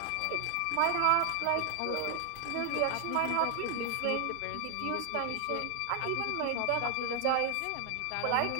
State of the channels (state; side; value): different; both; correlation 0.00